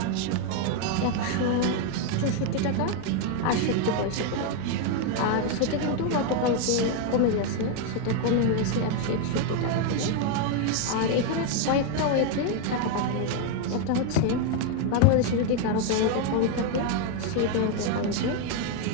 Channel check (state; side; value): different; both; correlation 0.01